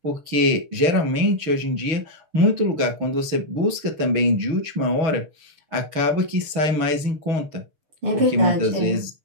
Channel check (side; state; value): left; late; 6.3 ms